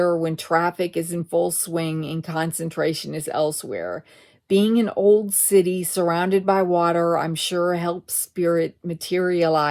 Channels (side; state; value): both; identical; correlation 1.00